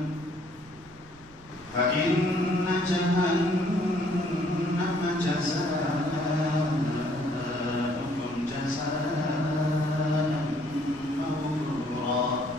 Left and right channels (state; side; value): noise; right; rumble, 24 dB below the sound